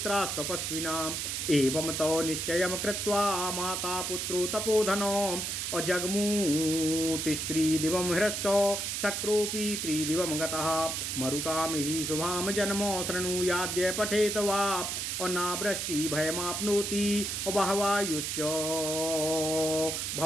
एवं तो निश्चयं कृत्वा माता पुत्रो तपोधनो अजग्मूतिस्त्रिदिवं हृष्टो शक्रोऽपि त्रिदिवं गतः मरुतां हि शुभां जन्मो शृणुयाद्य पठेत वा और नावृष्टि भयमाप्नोति और बहवायुश्च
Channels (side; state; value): right; noise; hiss, 2 dB below the sound